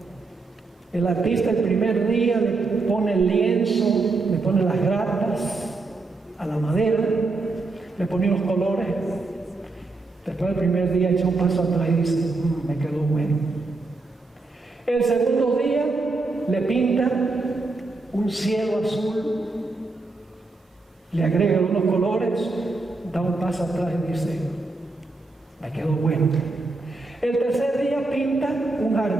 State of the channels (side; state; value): left; quieter; 3.6 dB